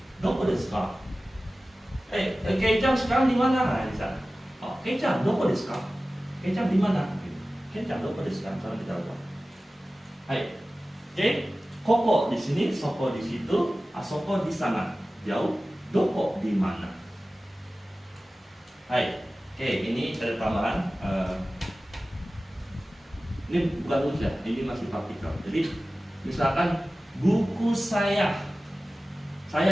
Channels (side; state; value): both; normal; correlation 0.96